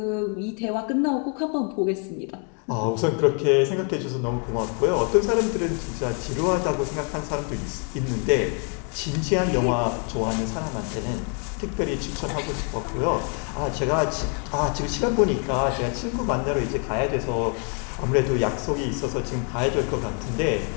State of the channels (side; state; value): right; quieter; 39.7 dB